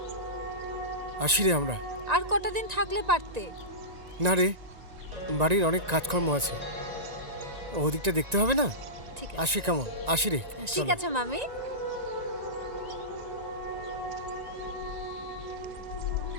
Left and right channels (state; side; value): late; left; 1.9 ms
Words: আসি রে আমরা। আর কটা দিন থাকলে পারতে। না রে, বাড়ির অনেক কাজকর্ম আছে, ওদিকটা দেখতে হবে না? ঠিক আসি কেমন? আসি রে। ঠিক চলো। আছে মামি।